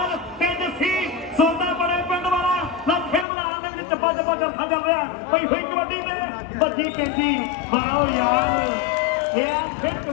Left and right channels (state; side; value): drops out; right; at 3.2 s